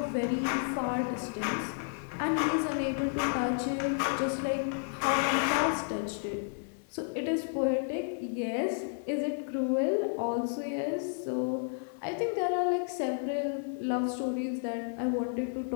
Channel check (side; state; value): right; silent; 57 dB below the other